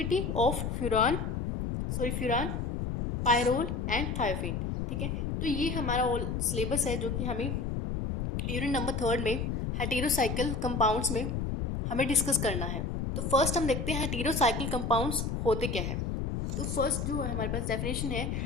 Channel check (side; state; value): left; noise; rumble, 2 dB below the sound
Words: of furan, pyrrole and thiophene. ठीक है। तो ये हमारा ऑल सिलेबस है जो कि हमें यूनिट नंबर 3 में हेटेरोसाइकिल कंपाउंड्स में हमें डिस्कस करना है। तो फर्स्ट हम देखते हैं हेटेरोसाइकिल कंपाउंड्स होते क्या है। तो फर्स्ट जो है हमारे पास डेफिनेशन है,